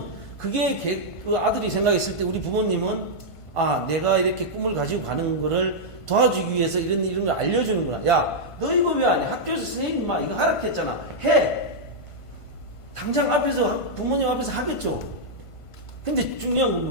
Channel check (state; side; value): late; right; 1.5 ms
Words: 그게 그 아들이 생각했을 때 우리 부모님은, 내가 이렇게 꿈을 가지고 가는 거를 도와주기 위해서 이런 걸 알려주는구나. 야, 너 이거 왜 안 해? 학교에서 선생님 이거 하라고 했잖아. 해! 당장 부모님 앞에서 하겠죠. 근데 중요한 건